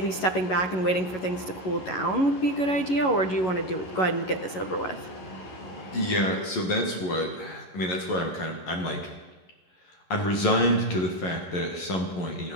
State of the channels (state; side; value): late; right; 11 ms